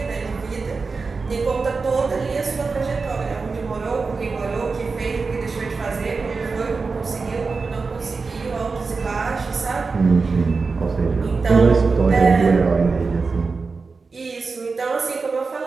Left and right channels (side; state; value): left; quieter; 4.4 dB